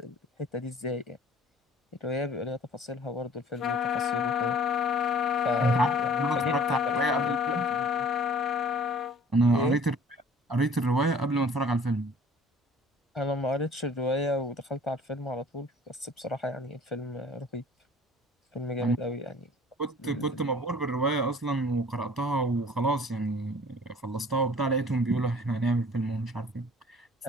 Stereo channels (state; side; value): normal; both; correlation 0.50